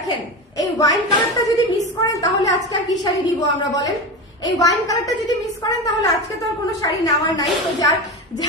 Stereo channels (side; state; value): both; normal; correlation 0.23